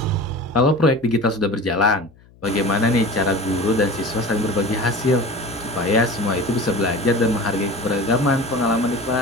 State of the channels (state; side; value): noise; left; hum, 27 dB below the sound